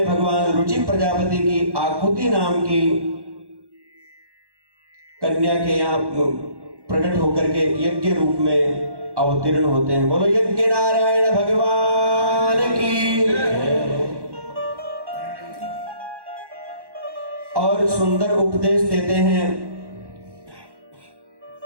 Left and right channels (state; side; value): late; left; 1.1 ms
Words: भगवान रुचि प्रजापति की आकुति नाम की कन्या के यहाँ प्रकट होकर के यज्ञ रूप में अवतीर्ण होते हैं। बोलो यज्ञ नारायण भगवान की। और सुंदर उपदेश देते हैं।